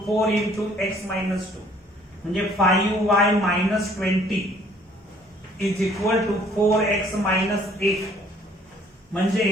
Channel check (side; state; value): both; normal; correlation 0.59